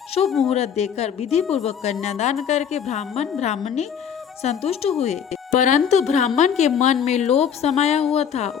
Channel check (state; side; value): quieter; right; 8.0 dB